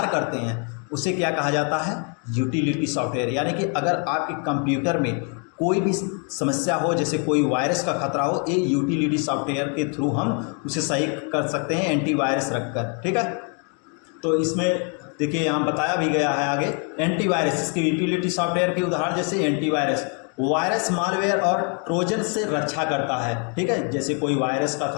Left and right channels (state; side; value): quieter; right; 39.3 dB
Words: करते हैं, उसे क्या कहा जाता है? Utility software. यानी कि अगर आपके कंप्यूटर में कोई भी समस्या हो, जैसे कोई वायरस का खतरा हो, ये यूटिलिटी सॉफ्टवेयर के थ्रू हम उसे सही कर सकते हैं, एंटीवायरस रखकर। ठीक है, तो इसमें देखिए यहाँ बताया भी गया है आगे एंटीवायरस। इसकी यूटिलिटी सॉफ्टवेयर के उदाहरण जैसे एंटीवायरस, वायरस, मालवेयर और ट्रोजन से रक्षा करता है। ठीक है, जैसे कोई वायरस का